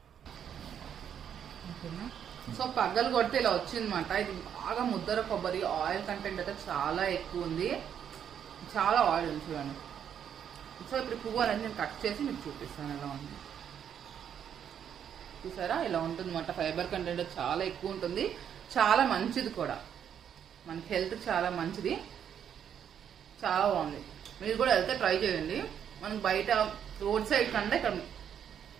ఓకేనా? సో పగ్గలు కొడితే ఇలా వచ్చిందన్నమాట. ఇది బాగా ముద్దర కొబ్బరి, ఆయిల్ కంటెంట్ అయితే చాలా ఎక్కువ ఉంది, చాలా ఆయిల్ ఉంది చూడండి. సో ఇప్పుడు పువ్వు అనేది నేను కట్ చేసి మీకు చూపిస్తాను ఎలా ఉంది. చూసారా ఇలా ఉంటుంది అన్నమాట. ఫైబర్ కంటెంట్ చాలా ఎక్కువ ఉంటుంది, చాలా మంచిది కూడా, మనకి హెల్త్ చాలా మంచిది, చాలా బాగుంది. మీరు కూడా వెళ్తే ట్రై చేయండి. మనకి బయట రోడ్ సైడ్ కంటే ఇక్కడ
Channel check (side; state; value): left; quieter; 8.7 dB